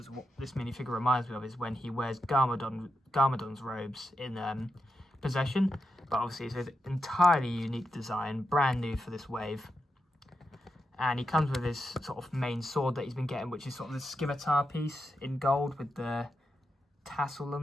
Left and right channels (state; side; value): normal; both; correlation 0.86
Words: what this minifigure reminds me of, is when he wears Garmadon's robes in Possession. But obviously it's an entirely unique design, brand new for this wave. And he comes with his sort of main sword that he's been getting, which is sort of the scimitar piece in gold with the tassel